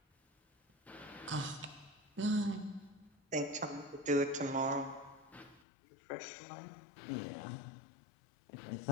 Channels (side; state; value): right; drops out; at 5.7 s